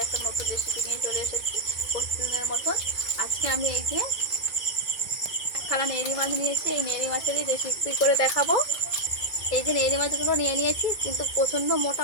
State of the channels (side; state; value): right; late; 2.2 ms